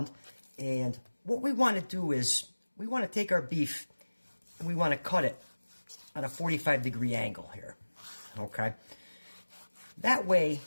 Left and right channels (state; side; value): inverted; both; correlation -1.00